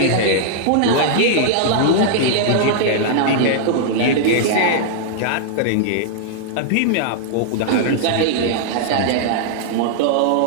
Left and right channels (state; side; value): different; both; correlation -0.01